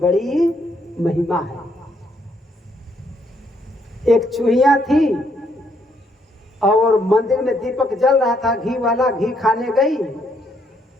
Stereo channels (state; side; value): normal; both; correlation 0.72